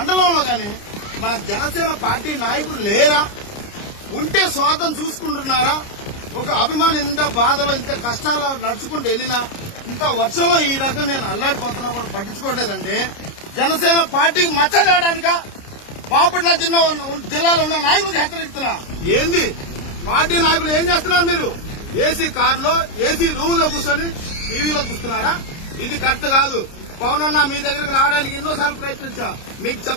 గాని మన జనసేన పార్టీ నాయకులు లేరా? ఉంటే స్వార్థం చూసుకుంటున్నారా? ఒక అభిమాని ఇంత బాధలో, ఇంత కష్టాలు నడుచుకుంటూ వెళ్ళినా, ఇంత వర్షంలో ఈ రకంగా నేను అల్లాడిపోతున్నా కూడా పట్టించుకోవట్లేదంటే జనసేన పార్టీకి మచ్చ తేయడానికా? బాపట్ల జిల్లాలో ఉన్న నాయకులకు హెచ్చరిస్తున్నా. ఏంది పార్టీ నాయకులు ఏం చేస్తున్నారు? మీరు ఏసీ కారులో ఏసీ రూమ్ లో కూర్చొని టీవీలో చూస్తున్నారా? ఇది కరెక్ట్ కాదు. పవన్ అన్న మీ దగ్గరకు రావడానికి ఎన్నోసార్లు ప్రయత్నించా, మీకు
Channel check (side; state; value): right; late; 29 ms